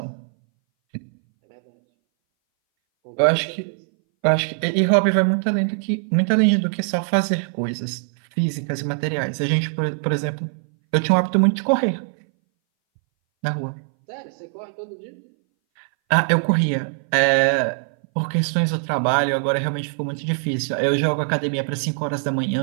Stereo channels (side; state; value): left; silent; 61 dB below the other